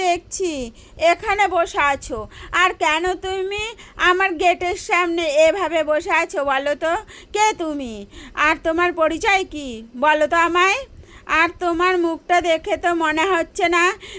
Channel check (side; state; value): both; identical; correlation 1.00